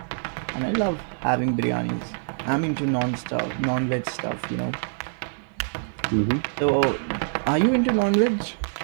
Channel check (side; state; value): left; silent; digital silence